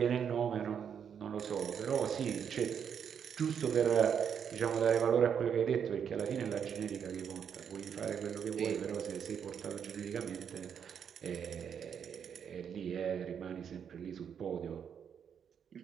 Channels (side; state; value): left; quieter; 7.7 dB